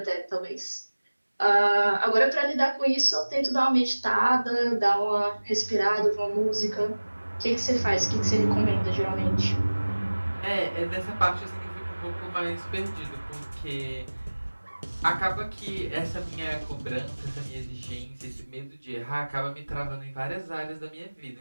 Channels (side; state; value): both; inverted; correlation -1.00